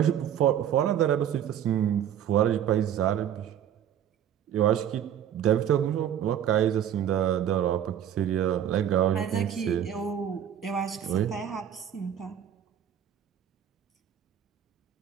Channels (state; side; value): quieter; left; 9.8 dB